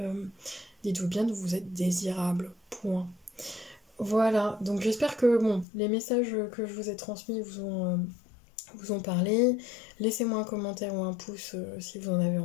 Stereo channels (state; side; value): drops out; right; at 5.7 s